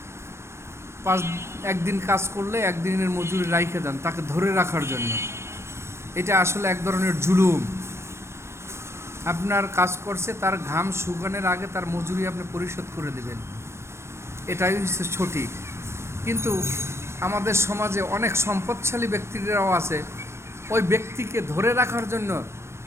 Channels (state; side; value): late; left; 0.13 ms